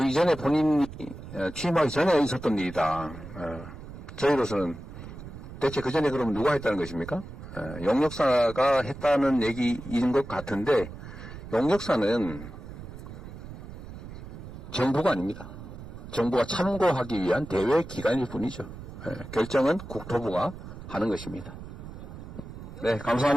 이전에 본인이 취임하기 전에 있었던 일이다. 저희로서는 대체 그 전에 그러면 누가 했다는 것입니까? 용역사가 했다는 얘기인 것 같은데 용역사는 정부가 아닙니다. 정부가 참고하기 위한 대외 기관일 뿐이죠. 결정은 국토부가 하는 것입니다. 네,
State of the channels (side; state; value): right; noise; rumble, 12 dB below the sound